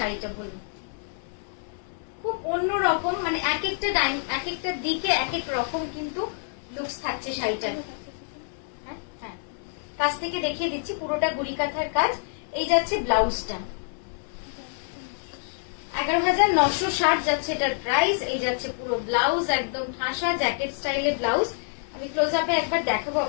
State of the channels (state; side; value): silent; right; 60 dB below the other